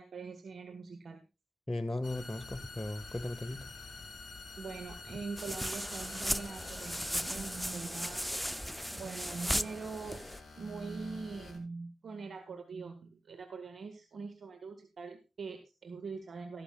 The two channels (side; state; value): both; normal; correlation 0.94